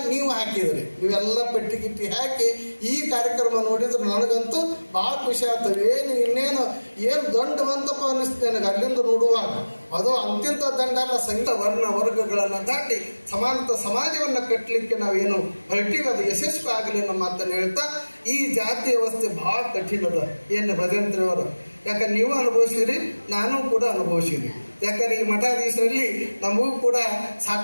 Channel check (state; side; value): inverted; both; correlation -1.00